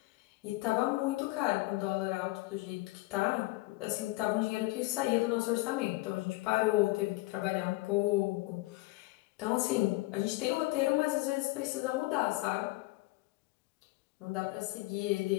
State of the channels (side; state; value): right; quieter; 21.4 dB